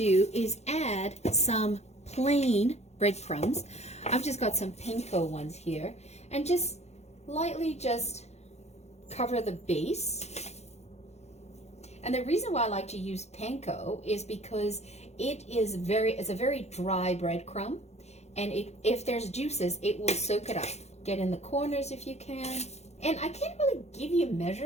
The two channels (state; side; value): late; right; 0.32 ms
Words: is add some plain breadcrumbs. I've just got some panko ones here, and just lightly just cover the base. And the reason why I like to use panko is because it's a very dry breadcrumb, and if there's juices, it will soak it up. Get in the corners if you can. And I can't really give you